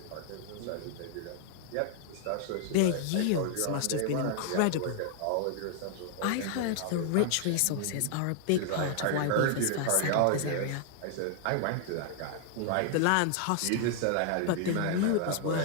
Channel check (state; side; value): different; both; correlation 0.00